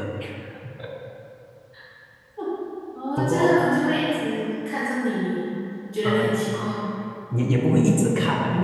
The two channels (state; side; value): identical; both; correlation 1.00